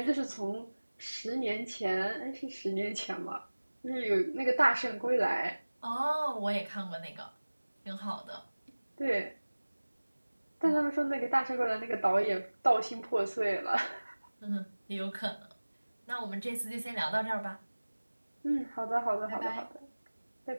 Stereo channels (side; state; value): both; inverted; correlation -1.00